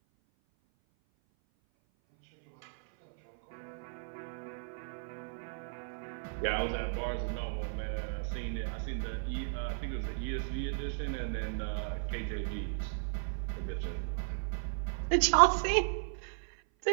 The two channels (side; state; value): left; silent; 54 dB below the other